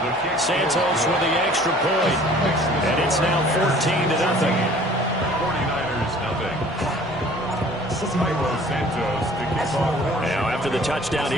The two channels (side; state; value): both; normal; correlation 0.51